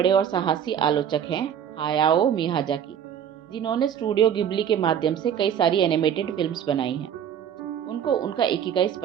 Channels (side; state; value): left; quieter; 9.0 dB